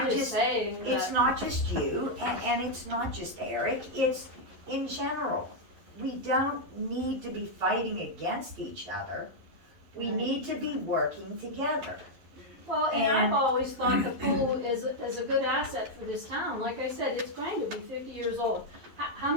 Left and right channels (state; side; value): late; left; 11 ms